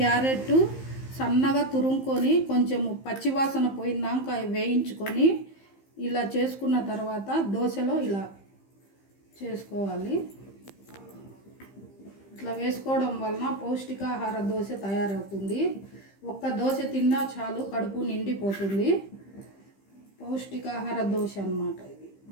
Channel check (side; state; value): right; late; 15 ms